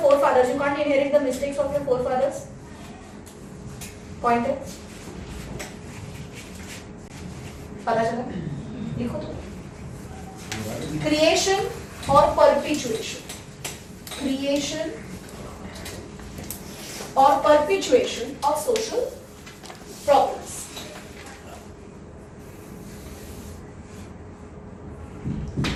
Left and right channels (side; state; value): both; identical; correlation 1.00